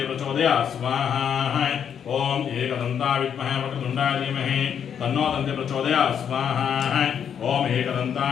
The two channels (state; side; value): quieter; right; 8.2 dB